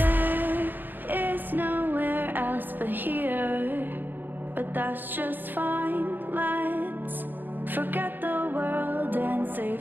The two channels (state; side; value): late; left; 0.091 ms